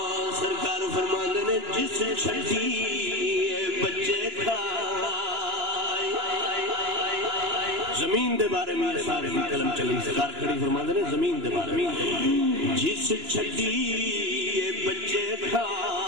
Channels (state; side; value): late; left; 2.9 ms